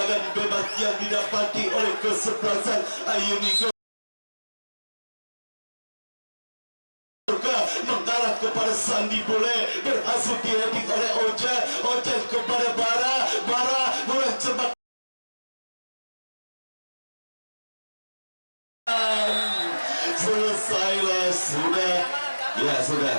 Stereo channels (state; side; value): inverted; both; correlation -1.00